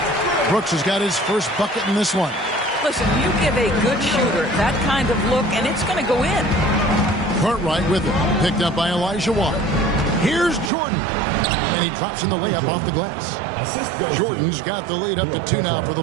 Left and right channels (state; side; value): drops out; left; at 10.7 s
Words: Brooks has got his first bucket in this one. Listen, you give a good shooter that kind of look, and it's going to go in. Cartwright with it. Picked up by Olajuwon. Here's Jordan. And he drops in the layup off the glass. Jordan's got the lead up to 2 now for the